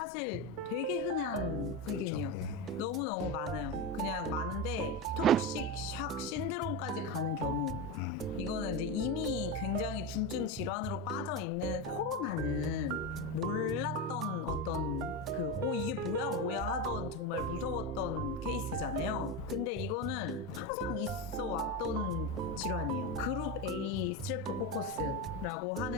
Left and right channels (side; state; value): both; normal; correlation 0.16